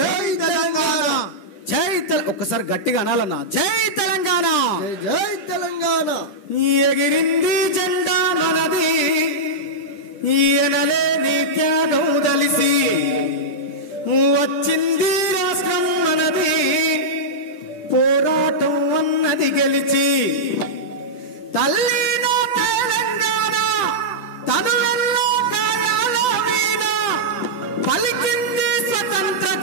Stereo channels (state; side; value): late; right; 10 ms